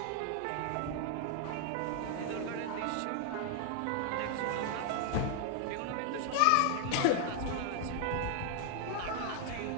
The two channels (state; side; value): different; both; correlation 0.00